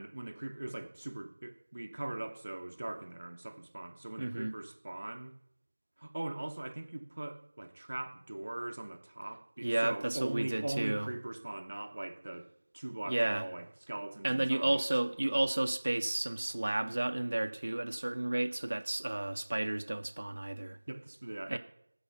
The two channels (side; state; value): both; inverted; correlation -1.00